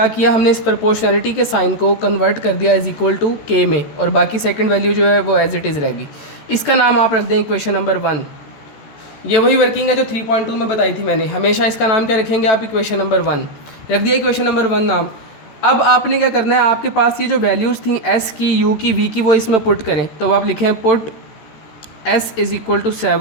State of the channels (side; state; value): right; late; 13 ms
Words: किया, हमने इस प्रोपोर्शनैलिटी के साइन को कन्वर्ट कर दिया इज़ इक्वल टू के में, और बाकी सेकंड वैल्यू जो है वो एज इट इज़ रहेगी। इसका नाम आप रख दें इक्वेशन नंबर 1। ये वही वर्किंग है जो 3.2 में बताई थी मैंने। हमेशा इसका नाम क्या रखेंगे आप, इक्वेशन नंबर 1 रख दिया, इक्वेशन नंबर 1 नाम। अब आपने क्या करना है, आपके पास ये जो वैल्यूज़ थी एस की, यू की, वी की, वो इसमें पुट करें। तो आप लिखें put s is equal to